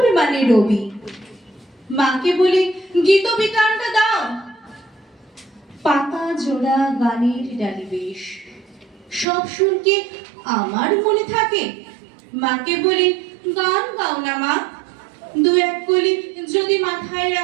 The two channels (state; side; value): drops out; left; at 9.2 s